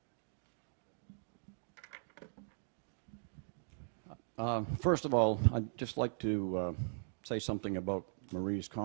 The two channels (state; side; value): silent; left; digital silence